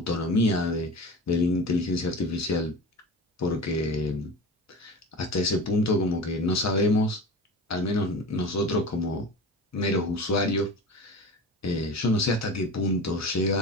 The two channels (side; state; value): both; normal; correlation 0.33